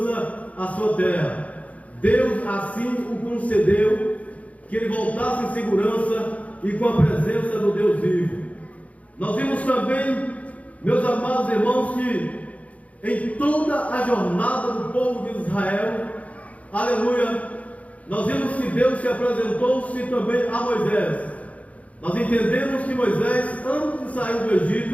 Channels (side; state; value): right; late; 0.067 ms